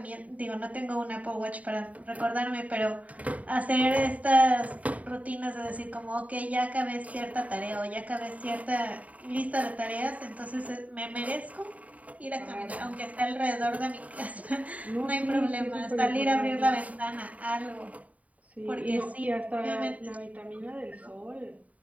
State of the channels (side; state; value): left; late; 0.070 ms